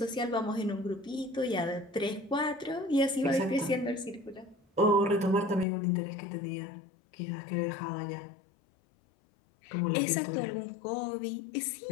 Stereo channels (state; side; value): drops out; right; at 5.7 s